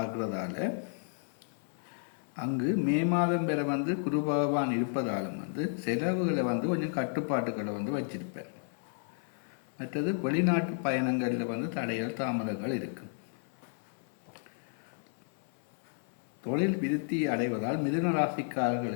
அங்கு மே மாதம் வரை குரு பகவான் இருப்பதாலும் செலவுகளை கொஞ்சம் கட்டுப்பாட்டுகளை வச்சிருப்பார். மற்றது வெளிநாட்டு பயணங்களில் தடைகள் தாமதங்கள் இருக்கும். தொழில் விருத்தி அடைவதால் மிதுன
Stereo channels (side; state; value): right; silent; 56 dB below the other